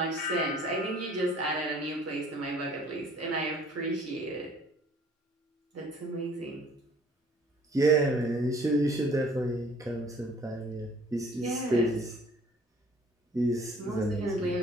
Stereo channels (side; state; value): both; normal; correlation 0.55